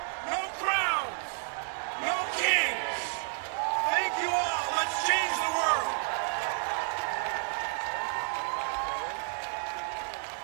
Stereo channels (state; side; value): silent; left; 57 dB below the other